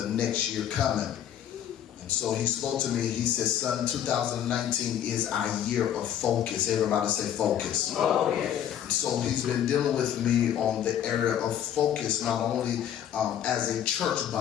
next year coming. And so he spoke to me. He said, "Son, 2019 is our year of focus." Everybody say focus. Oh, yes. So he's been dealing with me on the area of focus, not only as a church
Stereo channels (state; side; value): quieter; right; 10.1 dB